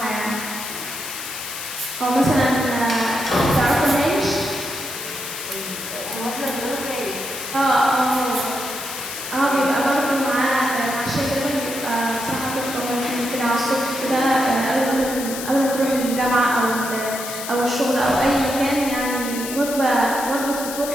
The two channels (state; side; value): noise; left; hiss, 8 dB below the sound